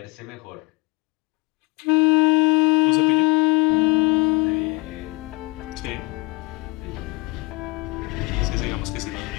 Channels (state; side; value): quieter; right; 24.6 dB